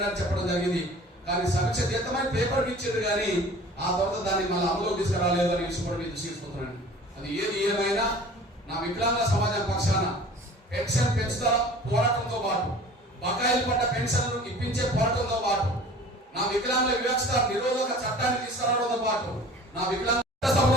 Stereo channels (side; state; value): both; normal; correlation 0.45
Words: చెప్పడం జరిగింది. కానీ సమీక్ష చేద్దామని పేపర్ ఇచ్చారు, కానీ ఆ తర్వాత దాన్ని మళ్ళీ అమలులోకి తీసుకురాలేదు అని విషయం కూడా మీరు తీసుకుంటున్నాను. అది ఏది ఏమైనా నా వికలాంగ సమాజం పక్షాన పెన్షన్ పెంచుతా పోరాటంతో పాటు, బకాయిలు పడ్డ పెన్షన్లు ఇప్పించే పోరాటంతో పాటు, నా వికలాంగుల వివక్షత నిరోధక చట్టాన్ని తీసుకురావడంతో పాటు, నా వికలాంగ